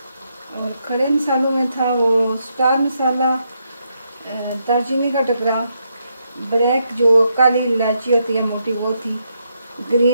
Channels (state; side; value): inverted; both; correlation -0.80